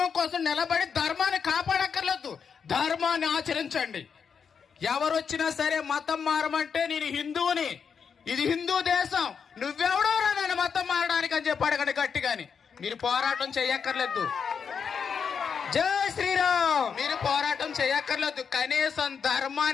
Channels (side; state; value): right; quieter; 6.5 dB